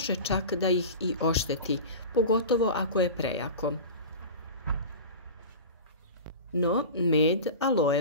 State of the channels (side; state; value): both; inverted; correlation -0.32